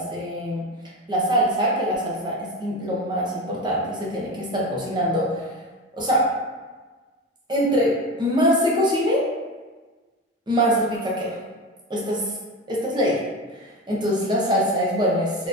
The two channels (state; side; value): normal; both; correlation 0.24